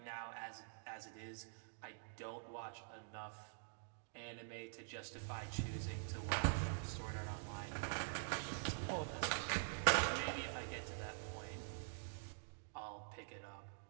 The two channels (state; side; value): silent; left; digital silence